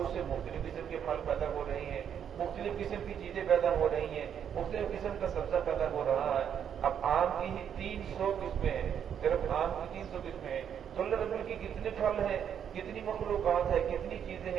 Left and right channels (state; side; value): quieter; left; 8.6 dB